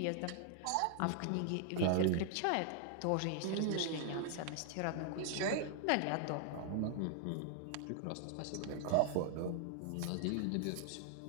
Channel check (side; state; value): both; different; correlation 0.00